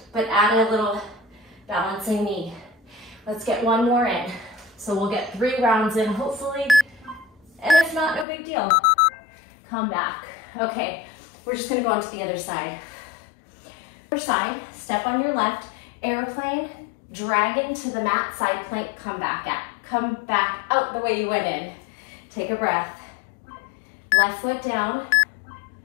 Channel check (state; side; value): drops out; right; at 8.2 s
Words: but add a little balancing knee. Let's get one more in. So we'll get 3 rounds in, hopefully, and if not, no big deal. Come back. Okay, we're just gonna go on to the other side. Other side, step on your left, airplane, dragon to the mat, side plank, come back out the way you went in. Take a breath. Left foot down,